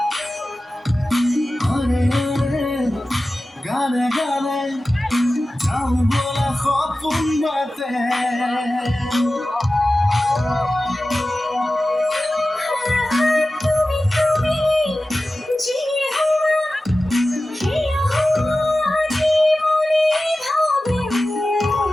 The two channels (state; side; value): normal; both; correlation 0.95